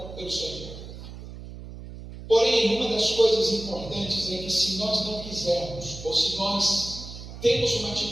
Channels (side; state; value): right; noise; hum, 13 dB below the sound